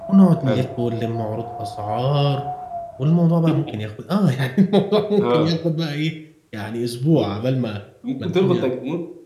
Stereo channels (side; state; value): both; identical; correlation 1.00